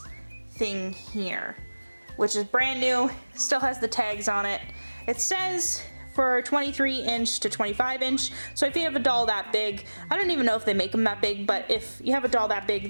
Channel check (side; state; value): both; inverted; correlation -1.00